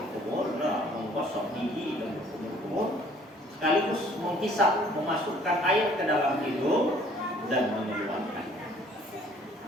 menggosok gigi dan berkumur-kumur, sekaligus menghisap, memasukkan air ke dalam hidung dan mengeluarkannya.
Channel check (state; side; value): normal; both; correlation 0.57